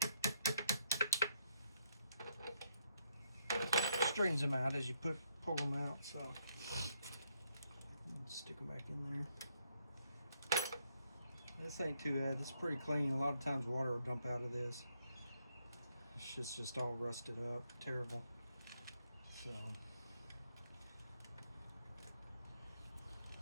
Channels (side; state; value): both; inverted; correlation -0.75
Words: Straightens them out as you pull them out, so stick them back in there. This ain't too bad. It's pretty clean. A lot of times water will dump out of this. It's just all rusted up, terrible. So